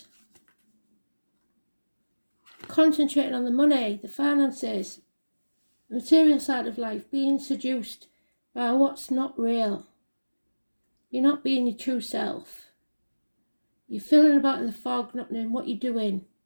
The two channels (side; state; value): both; inverted; correlation -1.00